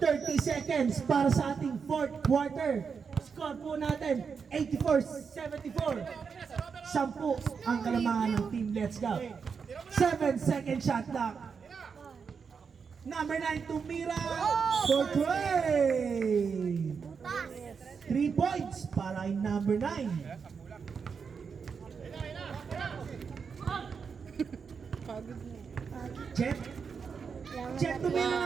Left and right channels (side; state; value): left; quieter; 5.9 dB